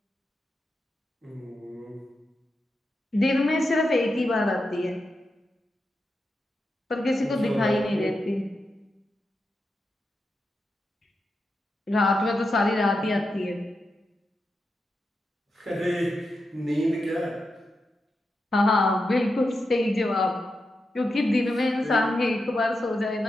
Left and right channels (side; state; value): both; normal; correlation 0.88